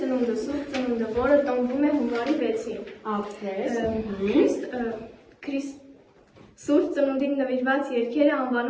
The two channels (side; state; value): both; identical; correlation 1.00